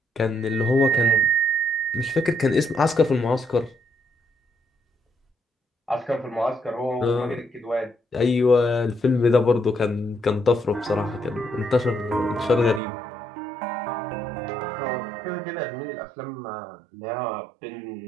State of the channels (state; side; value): drops out; left; at 12.8 s